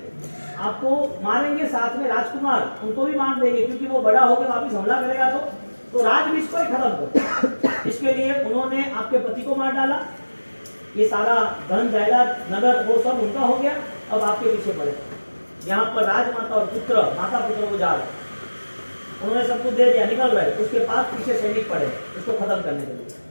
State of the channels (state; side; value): inverted; both; correlation -1.00